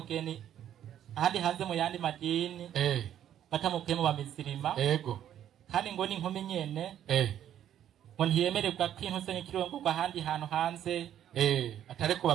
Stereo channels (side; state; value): left; quieter; 10.7 dB